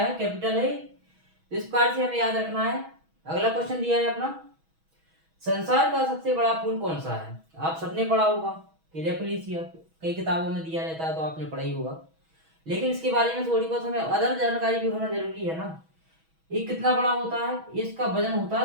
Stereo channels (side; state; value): left; late; 6.2 ms